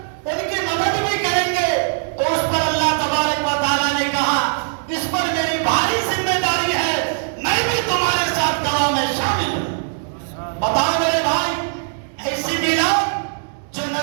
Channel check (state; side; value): silent; left; digital silence